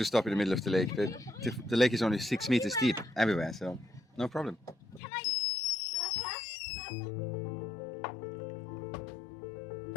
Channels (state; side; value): drops out; right; at 5.0 s